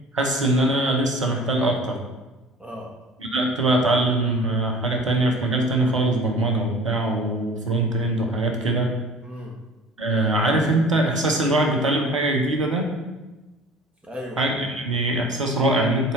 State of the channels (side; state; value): both; normal; correlation 0.44